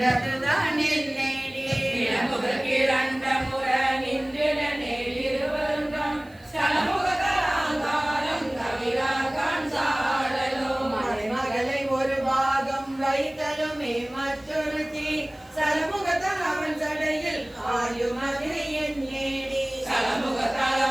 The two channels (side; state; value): right; noise; hiss, 30 dB below the sound